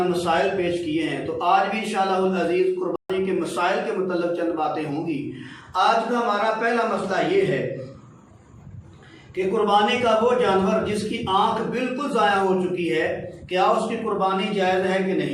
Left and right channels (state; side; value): identical; both; correlation 1.00